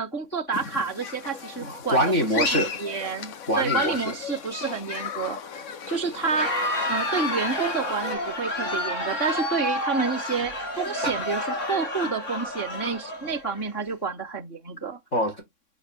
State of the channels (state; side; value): late; right; 3.6 ms